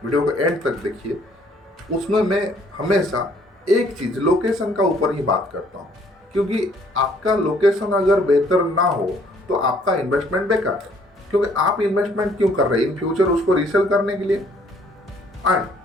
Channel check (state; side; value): normal; both; correlation 0.62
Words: वीडियो को एंड तक देखिए, उसमें मैं हमेशा एक चीज़ लोकेशन का ऊपर ही बात करता हूँ, क्योंकि आपका लोकेशन अगर बेहतर ना हो तो आपका इन्वेस्टमेंट बेकार है। क्योंकि आप इन्वेस्टमेंट क्यों कर रहे हैं? इन फ्यूचर उसको रीसेल करने के लिए। एंड